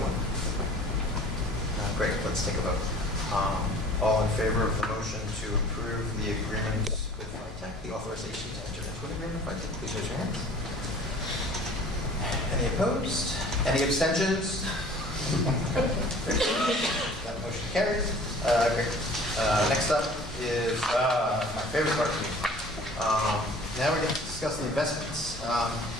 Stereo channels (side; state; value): both; normal; correlation 0.48